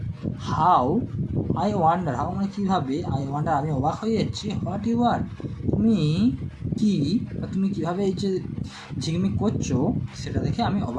হাউ আই ওয়ান্ডার, হাউ মানে কীভাবে, আই ওয়ান্ডার আমি অবাক হয়ে যাচ্ছি, হোয়াট ইউ আর তুমি কি বা তুমি কীভাবে এই যে ঝিকমিক করছো সেটা দেখে আমি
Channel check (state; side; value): identical; both; correlation 1.00